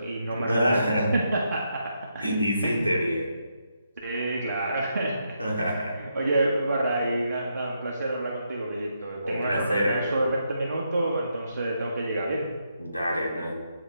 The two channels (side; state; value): both; inverted; correlation -0.80